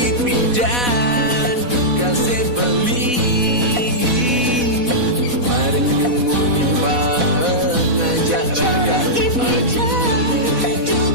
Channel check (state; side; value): late; left; 4.1 ms